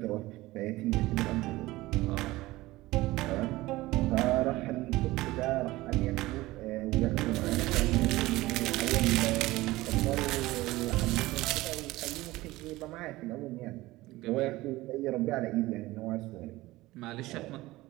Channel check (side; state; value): left; quieter; 18.7 dB